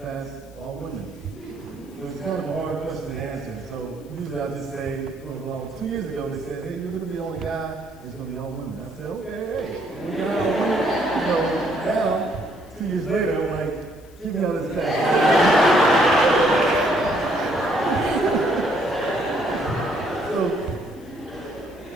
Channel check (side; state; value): left; noise; hiss, 28 dB below the sound